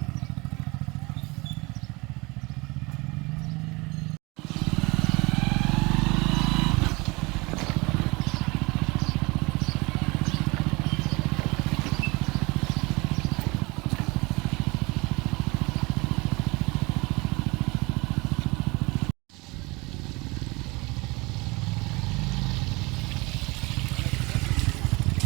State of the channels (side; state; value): left; quieter; 24.9 dB